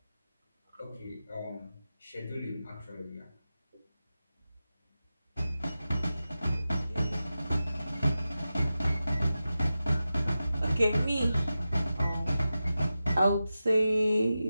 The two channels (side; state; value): both; inverted; correlation -0.93